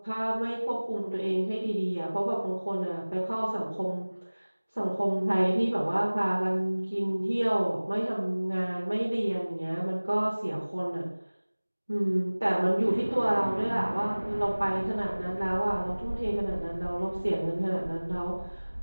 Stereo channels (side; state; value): both; inverted; correlation -1.00